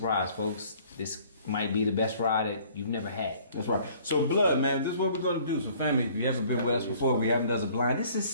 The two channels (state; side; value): inverted; both; correlation -0.55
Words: folks. This might be the best rye that you've never had. That's right. So Blood, man, this is what we're gonna do. So family, if you've never been with us before, we haven't done a blind. This is